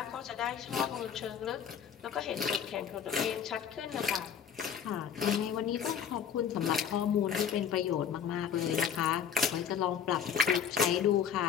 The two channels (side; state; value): right; quieter; 7.8 dB